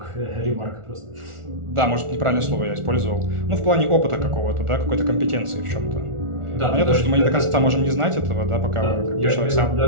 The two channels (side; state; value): left; late; 1.4 ms